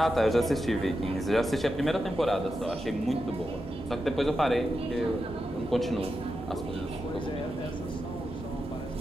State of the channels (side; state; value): both; normal; correlation 0.88